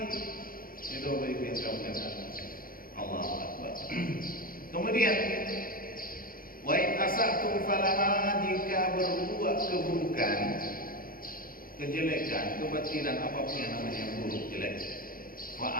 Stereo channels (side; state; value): right; late; 0.41 ms